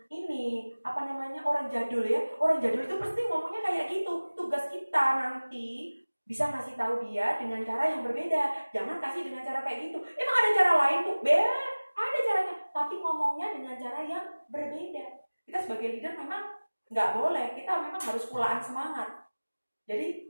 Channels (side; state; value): both; inverted; correlation -1.00